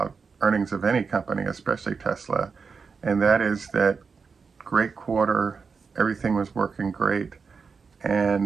earnings of any company, especially Tesla, and that is that great quarter, everything was working great,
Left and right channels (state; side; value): quieter; left; 5.3 dB